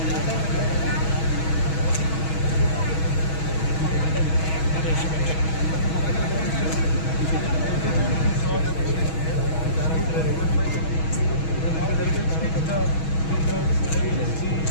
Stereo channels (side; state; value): right; late; 6.2 ms